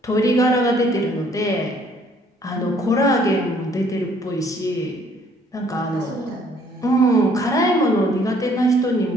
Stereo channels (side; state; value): both; normal; correlation 0.62